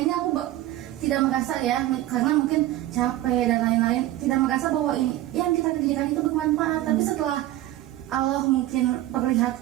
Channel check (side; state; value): left; quieter; 14.9 dB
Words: aku tidak merasa ya, karena mungkin capek dan lain-lain, tidak merasa bahwa ini yang kita kerjakan itu bermanfaat. Tapi setelah Allah mungkin